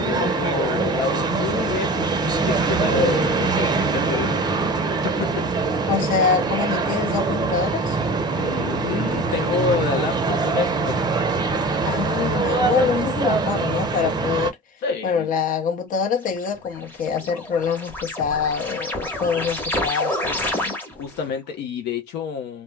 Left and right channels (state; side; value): normal; both; correlation 0.35